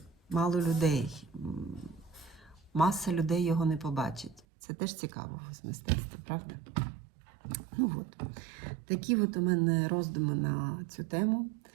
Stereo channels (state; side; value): drops out; left; at 4.5 s